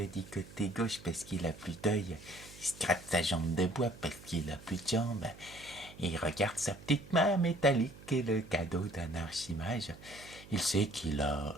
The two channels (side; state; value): right; noise; hum, 18 dB below the sound